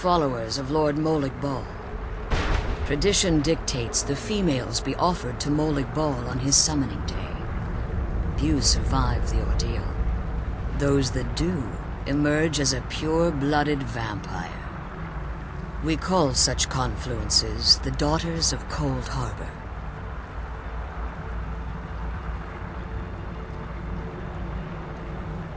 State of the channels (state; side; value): identical; both; correlation 1.00